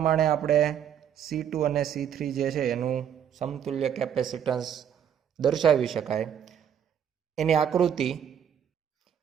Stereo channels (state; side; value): quieter; left; 9.0 dB